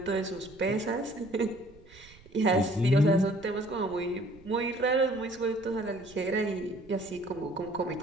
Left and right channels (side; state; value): right; noise; rumble, 23 dB below the sound